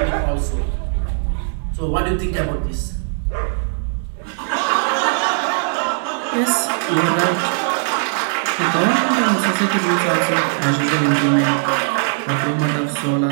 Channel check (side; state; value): left; silent; digital silence